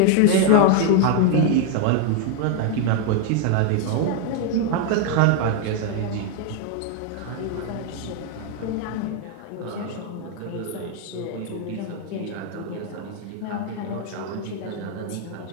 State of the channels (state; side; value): different; both; correlation 0.00